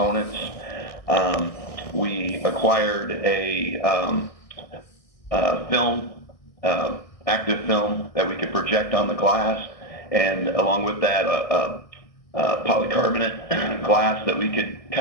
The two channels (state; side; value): late; right; 1.6 ms